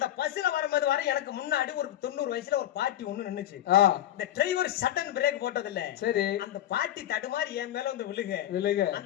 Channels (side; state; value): right; quieter; 12.3 dB